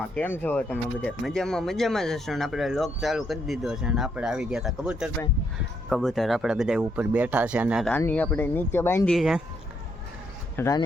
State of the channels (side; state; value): both; normal; correlation 0.75